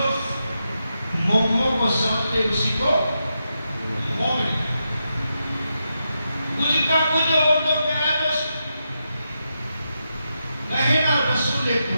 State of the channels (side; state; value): both; inverted; correlation -0.86